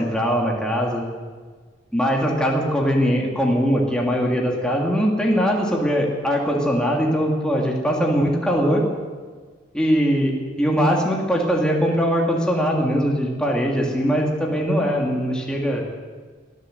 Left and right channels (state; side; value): normal; both; correlation 0.74